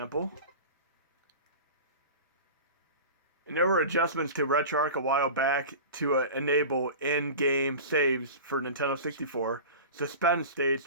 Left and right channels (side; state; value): both; inverted; correlation -0.33